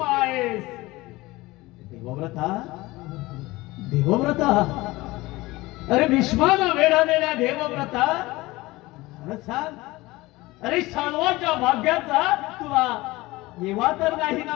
आहेस. देवव्रता, देवव्रता, अरे भीष्माला वेढालेल्या देवव्रता, खरं सांग, अरे शाल्वाच्या भाग्याचा तुला येवा तर नाही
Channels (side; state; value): right; quieter; 20.2 dB